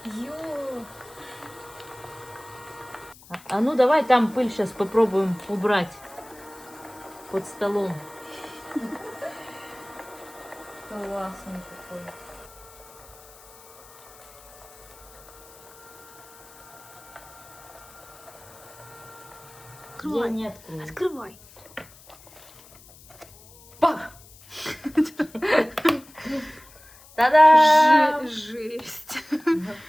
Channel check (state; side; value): noise; left; hiss, 22 dB below the sound